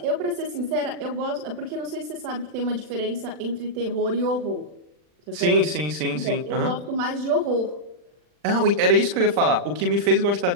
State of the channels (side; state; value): left; late; 40 ms